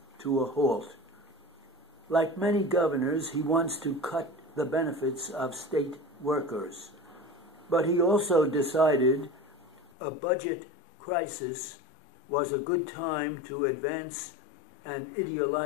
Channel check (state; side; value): drops out; right; at 9.8 s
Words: to a halt. Like many governors, he wants to cut the benefits of state workers. But he also decided a budget crisis was a good time to advance an